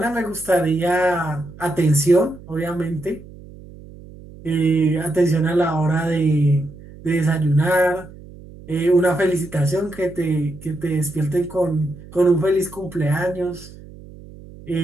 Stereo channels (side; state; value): right; noise; hum, 18 dB below the sound